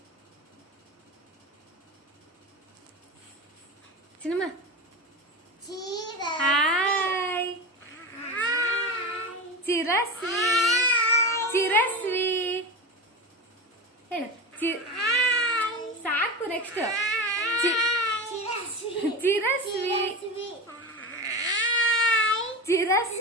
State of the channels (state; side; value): normal; both; correlation 0.24